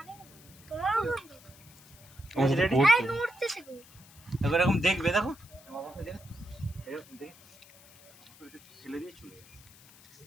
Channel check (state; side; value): noise; left; hiss, 23 dB below the sound